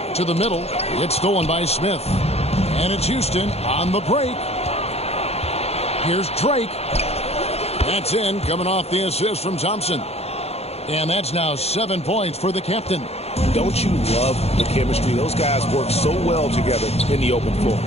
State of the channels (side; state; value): right; late; 0.30 ms